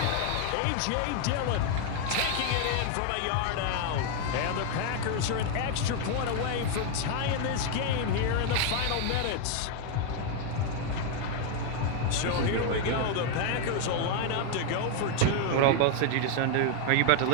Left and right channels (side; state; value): both; different; correlation 0.01